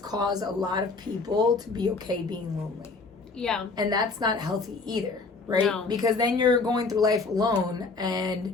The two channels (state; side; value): quieter; right; 4.0 dB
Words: a lot of people to be okay being lonely. Yeah. And that's not healthy either, right? No. Because then you're going through life alone